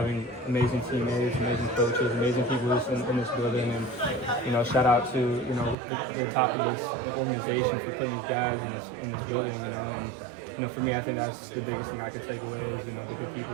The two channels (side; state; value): left; drops out; at 5.8 s